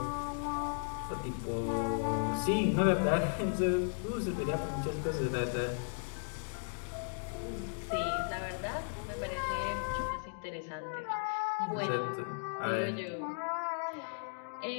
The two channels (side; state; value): right; silent; digital silence